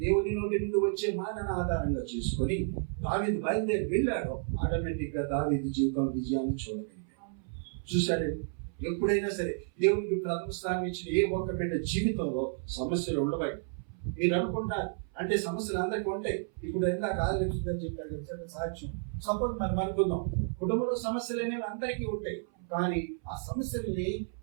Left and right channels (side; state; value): left; silent; 57 dB below the other